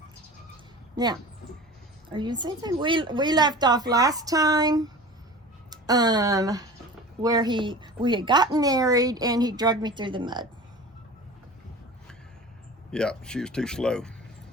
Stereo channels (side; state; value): both; normal; correlation 0.37